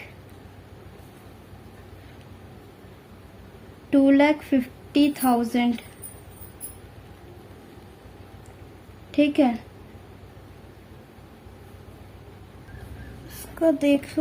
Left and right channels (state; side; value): identical; both; correlation 1.00